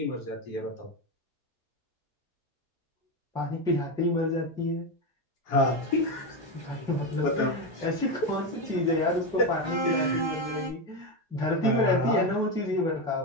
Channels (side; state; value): both; normal; correlation 0.13